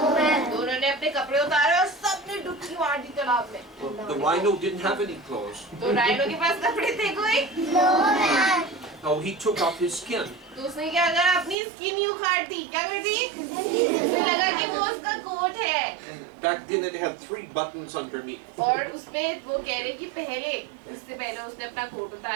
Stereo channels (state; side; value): drops out; left; at 11.6 s